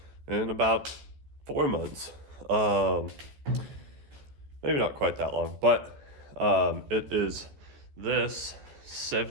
in about 4 months. Maybe not quite that long, but it is this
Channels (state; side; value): late; left; 14 ms